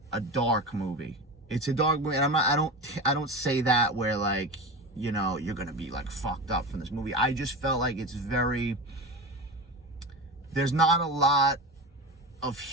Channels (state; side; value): normal; both; correlation 0.26